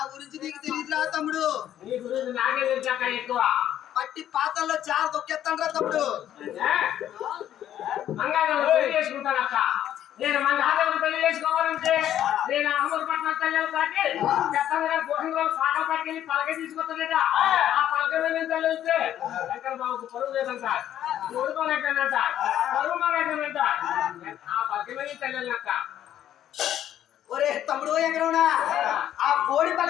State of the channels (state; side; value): quieter; right; 11.3 dB